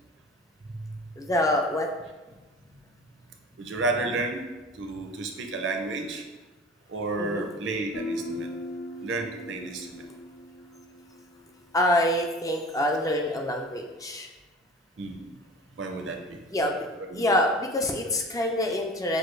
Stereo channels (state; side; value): normal; both; correlation 0.40